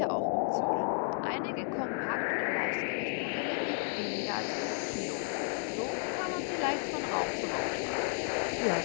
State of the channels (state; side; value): silent; right; 56 dB below the other